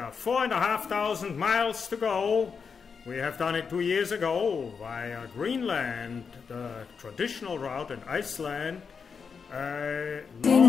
4,500 miles to go. We have done it 2 years ago via Greenland, the traditional route in Iceland. The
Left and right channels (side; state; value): right; quieter; 5.8 dB